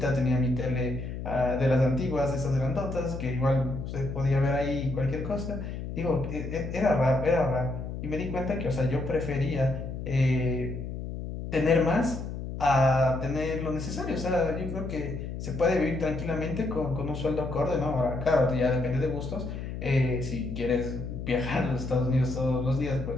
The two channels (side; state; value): left; noise; hum, 7 dB below the sound